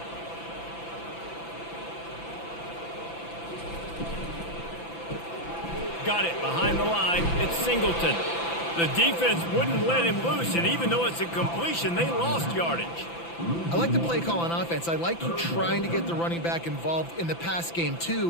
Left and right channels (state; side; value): late; right; 5.9 ms